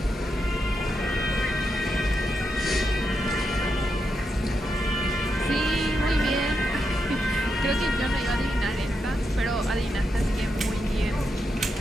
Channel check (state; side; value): normal; both; correlation 0.85